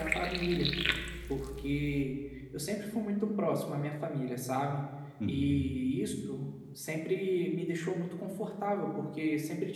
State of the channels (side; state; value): both; identical; correlation 1.00